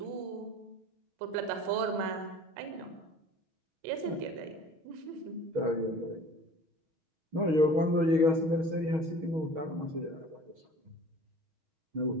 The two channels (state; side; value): late; left; 6.3 ms